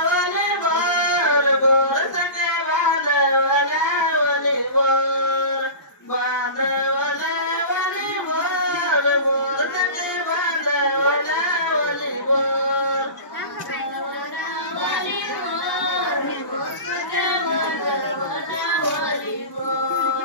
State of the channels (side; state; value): right; late; 1.0 ms